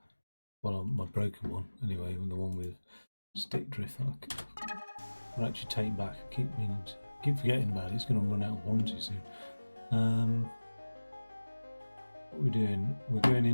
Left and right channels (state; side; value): inverted; both; correlation -1.00